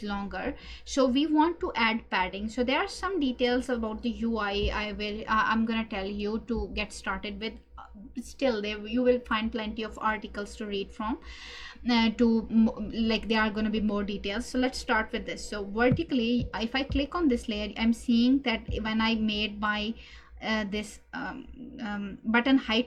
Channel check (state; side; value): identical; both; correlation 1.00